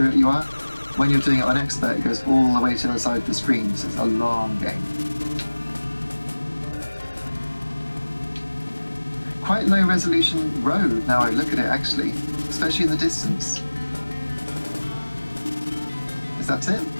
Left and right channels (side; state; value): both; inverted; correlation -1.00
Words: it you are. When you're doing it on Expert, it goes all the way to the side of the screen, so it's a long game. Quite low resolution road now I look at it, actually, especially in the distance. Is that it?